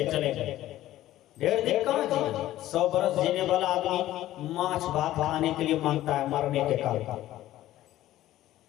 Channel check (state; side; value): quieter; right; 14.4 dB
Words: चले गए। ढेर दिन कहाँ जीए, 100 वर्ष जीने वाला आदमी मांस भात खाने के लिए मांगता है मरने के काल।